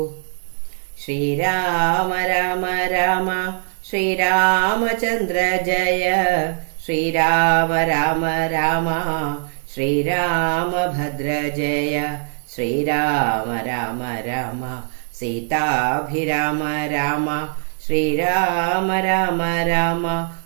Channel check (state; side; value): silent; left; digital silence